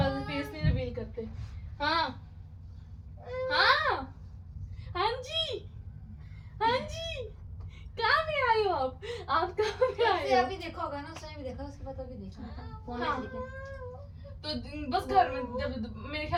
नहीं रिवील करते। हाँ हाँ हाँ जी, हाँ जी, कहाँ पे आए हो आप कहाँ पे आए से हो? अभी देखा होगा ना, उसने भी देखा, उसके बाद अभी देखा फोन में हाँ। देखा। तो बस घर में जब मेरे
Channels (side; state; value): both; identical; correlation 1.00